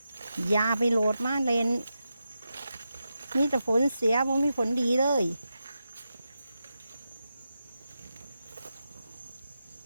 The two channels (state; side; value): inverted; both; correlation -0.88